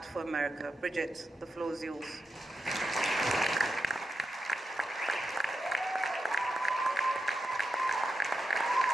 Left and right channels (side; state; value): both; normal; correlation 0.87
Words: for America. Brigitte, the floor is yours.